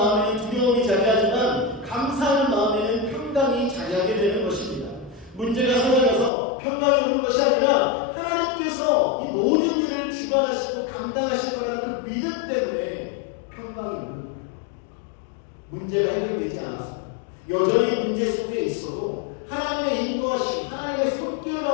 두려움이 자리하지만 감사하는 마음에는 평강이 자리하게 되는 것입니다. 문제가 사라져서 평강이 오는 것이 아니라 하나님께서 이 모든 일을 주관하시고 감당하실 거라는 그 믿음 때문에 평강이 오는 거예요. 문제가 해결되지 않았어요. 여전히 문제 속에 있어도 하나님의 인도하심, 하나님의 손길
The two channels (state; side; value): drops out; right; at 6.3 s